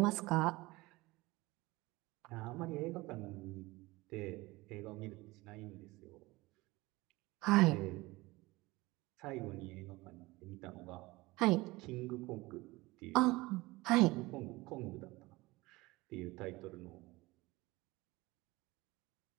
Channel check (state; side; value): quieter; left; 21.1 dB